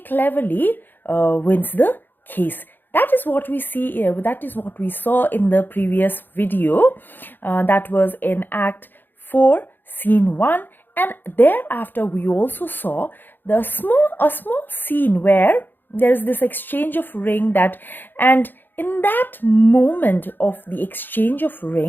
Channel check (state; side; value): late; right; 0.092 ms